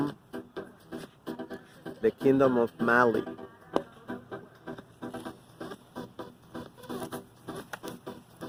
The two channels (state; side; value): identical; both; correlation 1.00